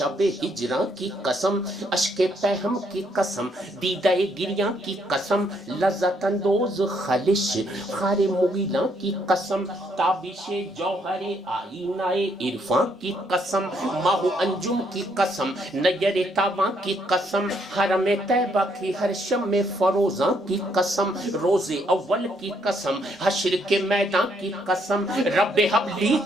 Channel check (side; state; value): both; normal; correlation 0.71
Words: ہجراں کی قسم, اشک پہم کی قسم, دیدہ گریاں کی قسم, لذت اندوز خلش خار مغیلاں کی قسم, تابش جوہر آئینہ عرفاں کی قسم, ماہ انجم کی قسم, نیر تاباں کی قسم, حرم طیبہ کی ہر شم فروزاں کی قسم, روز اول کی قسم, حشر کے میدان کی قسم, رب حبلی